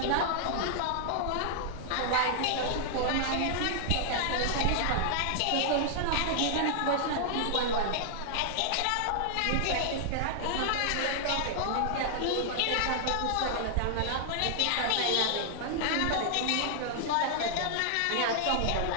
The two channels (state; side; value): different; both; correlation -0.01